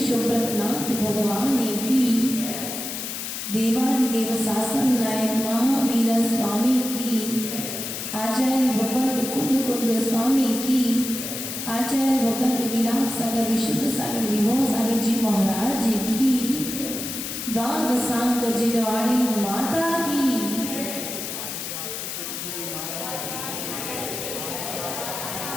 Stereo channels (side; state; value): left; noise; hiss, 6 dB below the sound